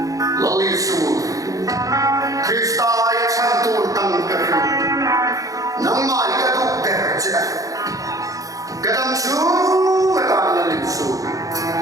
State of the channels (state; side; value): late; left; 0.17 ms